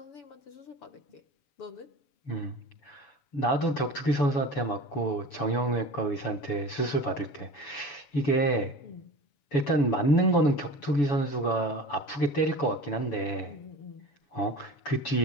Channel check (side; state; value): right; late; 7.0 ms